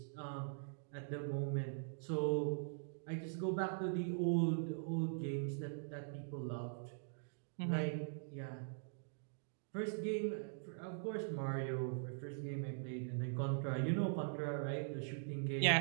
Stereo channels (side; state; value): left; silent; digital silence